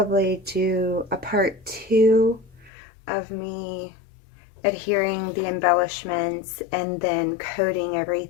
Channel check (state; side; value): drops out; right; at 2.7 s